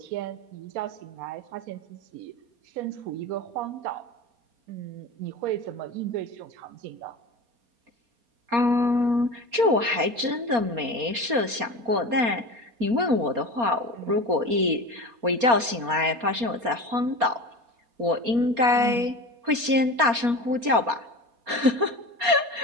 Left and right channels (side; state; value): left; late; 4.3 ms